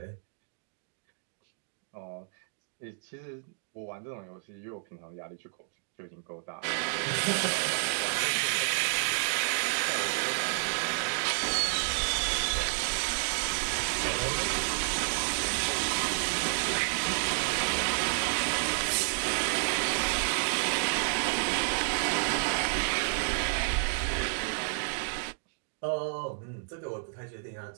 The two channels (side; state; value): left; silent; digital silence